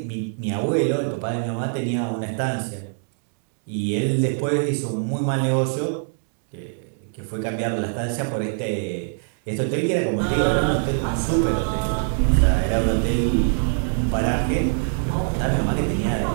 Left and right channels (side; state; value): left; silent; digital silence